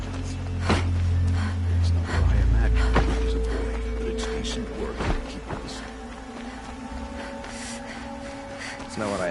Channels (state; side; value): identical; both; correlation 1.00